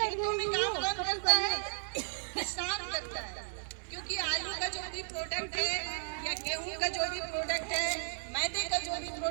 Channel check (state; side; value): silent; left; 55 dB below the other